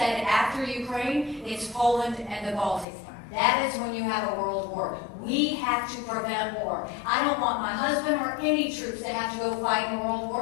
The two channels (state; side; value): drops out; right; at 2.9 s